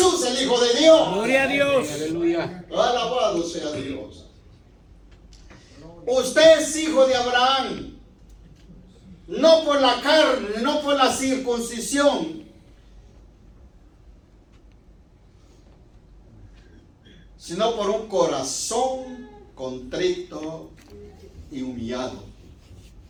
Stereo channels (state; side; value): identical; both; correlation 1.00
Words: el Hijo de Dios. Gloria a Dios. Aleluya. Alabado sea Dios. Usted es hijo de Abraham. no por la carne, no por la circuncisión, sino por un corazón contrito y humillado.